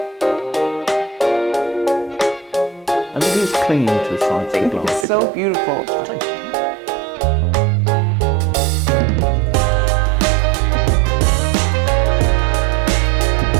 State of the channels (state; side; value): drops out; left; at 5.1 s